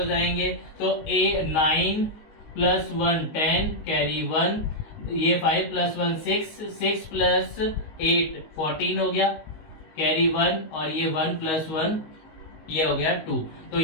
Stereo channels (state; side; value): late; right; 19 ms